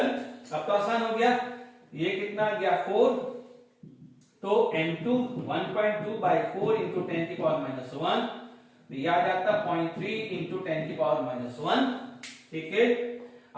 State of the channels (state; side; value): identical; both; correlation 1.00